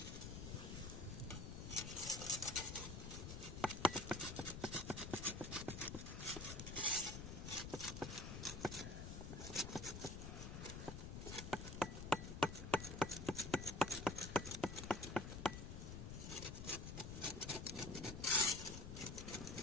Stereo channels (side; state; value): left; noise; rumble, 7 dB below the sound